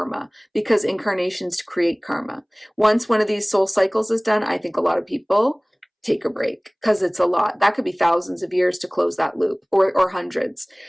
because incarnations create karma. Once one of these soul cycles is done, I think a lot of people take a break because it's a lot. That could be thousands of years to close that loop, or hundreds.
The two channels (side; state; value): both; identical; correlation 1.00